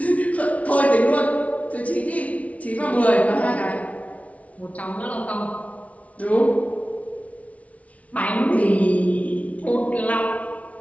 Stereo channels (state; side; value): late; right; 0.067 ms